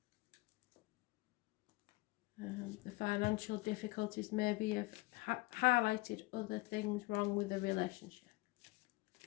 The financial difficulties maybe have highlighted other things wrong with the relationship.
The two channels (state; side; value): quieter; right; 22.5 dB